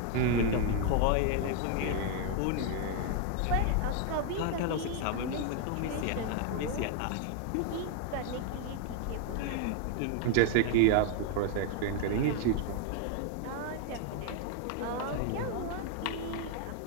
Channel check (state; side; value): different; both; correlation 0.00